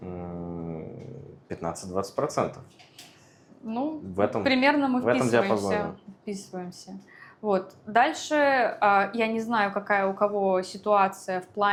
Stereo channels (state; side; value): identical; both; correlation 1.00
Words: Ну, в этом, примерно мы в этом вписываемся. диапазоне. Вписываемся. Вот. Дальше я не знаю, какая у кого ситуация в